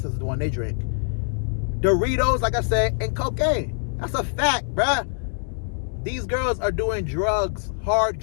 is the one they drink. Doritos, like I said, and cocaine. That's a fact, bruh. These girls are doing drugs, hard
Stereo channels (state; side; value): silent; right; 59 dB below the other